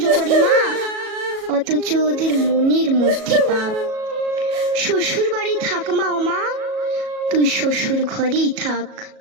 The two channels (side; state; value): left; late; 37 ms